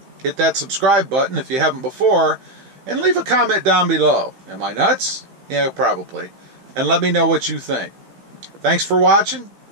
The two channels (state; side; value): late; left; 16 ms